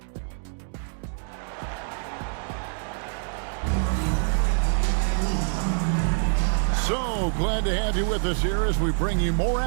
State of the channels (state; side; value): silent; left; 55 dB below the other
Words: So glad to have you with us here as we bring you more